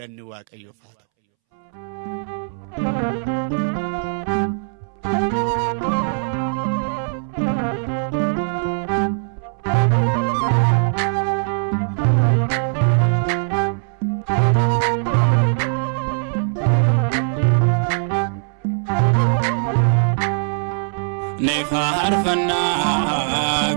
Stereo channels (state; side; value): silent; left; 65 dB below the other